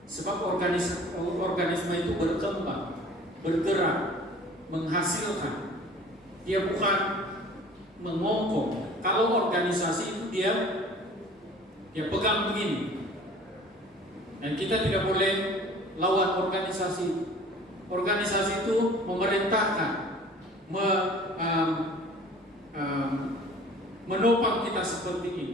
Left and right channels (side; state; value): both; normal; correlation 0.47